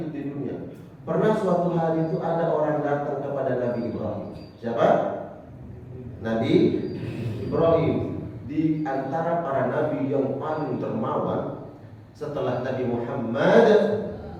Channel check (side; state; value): both; identical; correlation 1.00